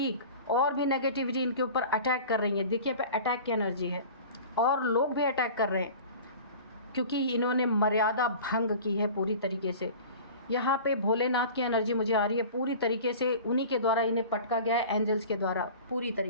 और भी नेगेटिविटी इनके ऊपर अटैक कर रही है। देखिए पे अटैक की एनर्जी है, और लोग भी अटैक कर रहे हैं क्योंकि इन्होंने मर्यादा भंग की है पूरी तरीके से। यहाँ पे भोलेनाथ की एनर्जी मुझे आ रही है पूरी तरीके से, उन्हीं के द्वारा इन्हें पटका गया है, एंजल्स के द्वारा पूरी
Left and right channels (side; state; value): both; inverted; correlation -0.39